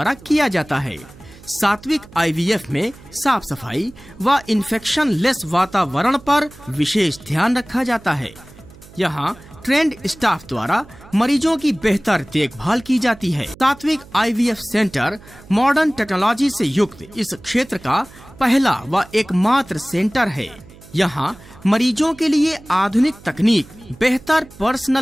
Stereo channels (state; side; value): noise; right; hum, 22 dB below the sound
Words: किया जाता है। सात्विक IVF में साफ सफाई व इन्फेक्शन लेस वातावरण पर विशेष ध्यान रखा जाता है। यहाँ ट्रेंड स्टाफ द्वारा मरीजों की बेहतर देखभाल की जाती है। सात्विक IVF सेंटर मॉडर्न टेक्नोलॉजी से युक्त इस क्षेत्र का पहला व एकमात्र सेंटर है। यहाँ मरीजों के लिए आधुनिक तकनीक, बेहतर